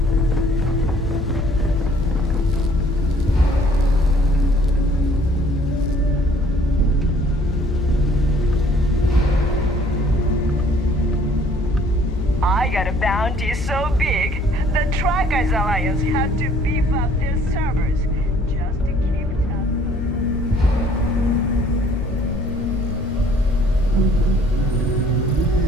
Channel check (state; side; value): noise; left; hum, 5 dB below the sound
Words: I got a bounty so big, the Trackers Alliance had to beef up their servers just to keep